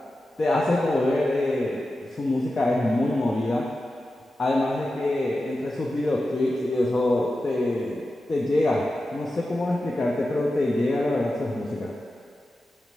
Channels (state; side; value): normal; both; correlation 0.92